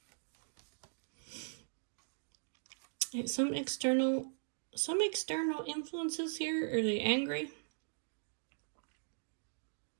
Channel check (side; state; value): left; silent; digital silence